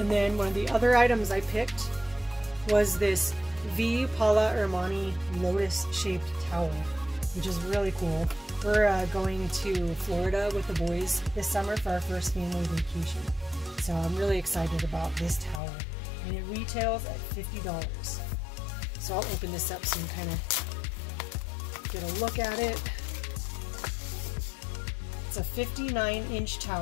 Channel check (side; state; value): right; drops out; at 15.6 s